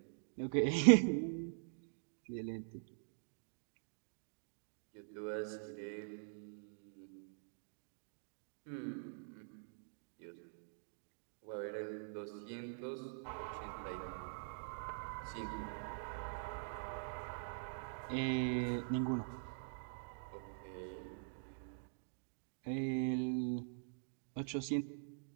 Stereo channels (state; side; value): silent; left; digital silence